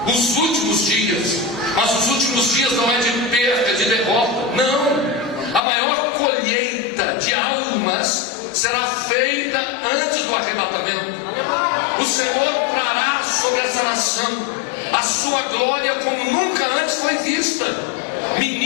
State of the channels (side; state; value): right; drops out; at 5.6 s